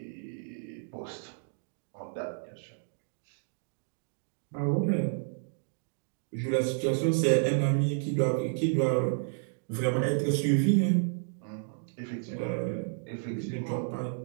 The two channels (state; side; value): silent; left; digital silence